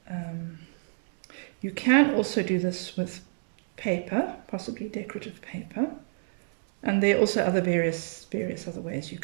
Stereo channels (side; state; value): left; silent; digital silence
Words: You can also do this with paper, possibly decorative paper, and there are also other various other ways you